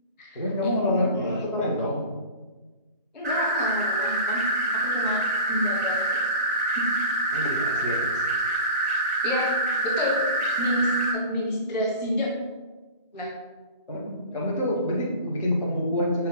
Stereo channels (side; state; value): both; inverted; correlation -0.36